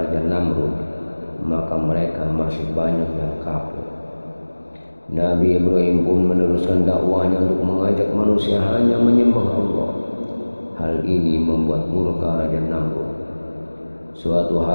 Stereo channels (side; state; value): both; inverted; correlation -1.00